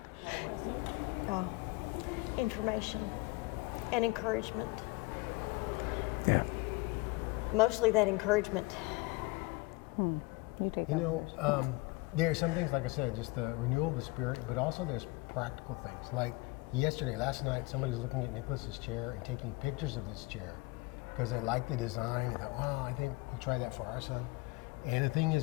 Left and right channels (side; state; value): right; quieter; 23.2 dB